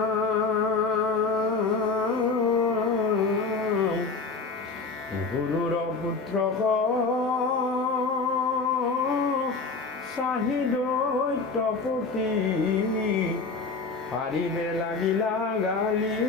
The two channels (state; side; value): quieter; right; 4.3 dB